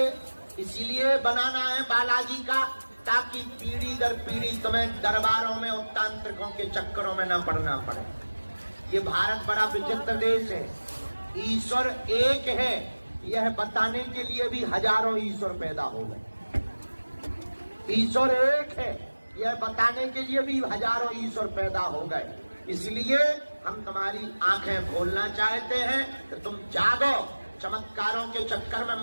बनाना है बालाजी का, ताकि पीढ़ी दर पीढ़ी तुम्हें दरबारों में उत्तांत्रिकों के चक्करों में न पड़ना पड़े। ये भारत बड़ा विचित्र देश है। ईश्वर एक है, यह बताने के लिए भी हजारों ईश्वर पैदा हो गए। ईश्वर एक है, यह बताने के लिए भी हजारों ईश्वर पैदा हो गए। इसलिए हम तुम्हारी आंखें खोलना चाहते हैं कि तुम जागो, चमत्कारों के चक्कर में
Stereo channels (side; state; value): both; inverted; correlation -1.00